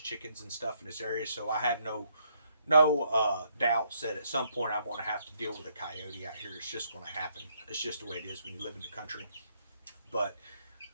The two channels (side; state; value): both; inverted; correlation -0.72